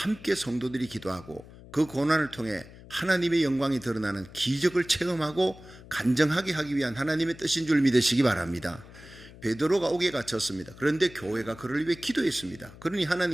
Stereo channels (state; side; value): noise; left; hum, 19 dB below the sound